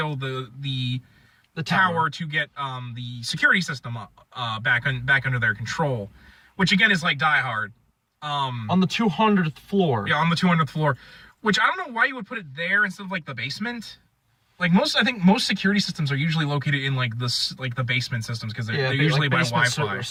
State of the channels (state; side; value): identical; both; correlation 1.00